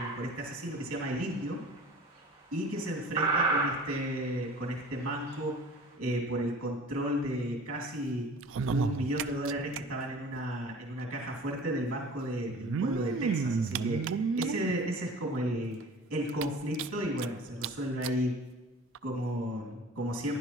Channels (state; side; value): normal; both; correlation 0.43